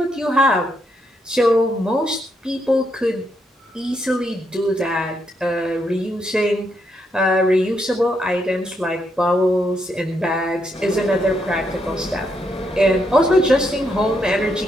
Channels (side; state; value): both; normal; correlation 0.78